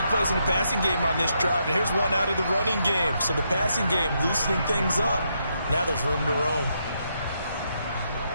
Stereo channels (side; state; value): both; inverted; correlation -0.79